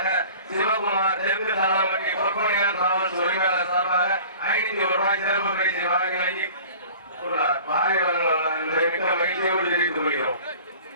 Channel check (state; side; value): inverted; both; correlation -0.44